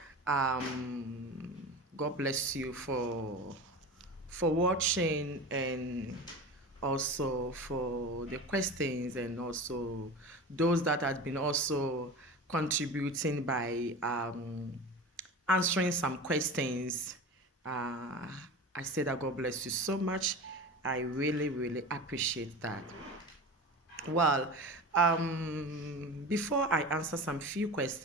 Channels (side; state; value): both; normal; correlation 0.31